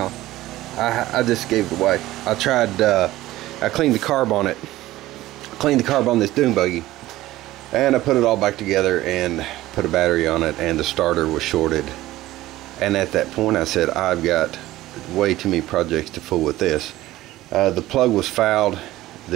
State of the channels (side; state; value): left; quieter; 16.3 dB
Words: I just gave it away. I tried, I cleaned the carb on it. Cleaned the carb on this dune buggy, and I put it all back together and put a battery on it, and the starter was shorted. And at that point I said, I've got way too many projects to fool with this. The plug was fouled.